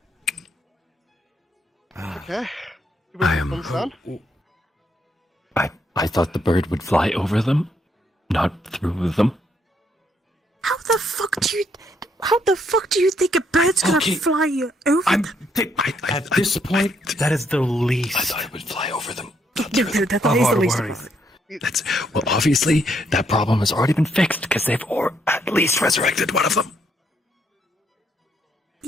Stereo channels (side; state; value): both; normal; correlation 0.73